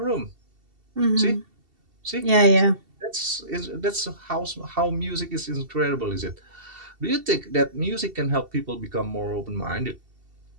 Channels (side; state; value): left; late; 2.7 ms